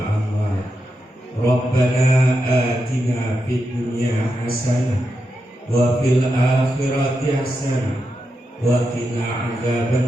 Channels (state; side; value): normal; both; correlation 0.86